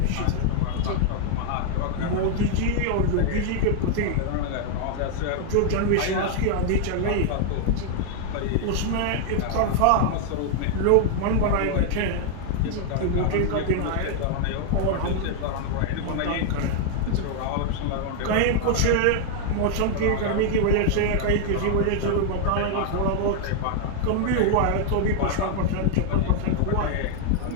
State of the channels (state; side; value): different; both; correlation 0.00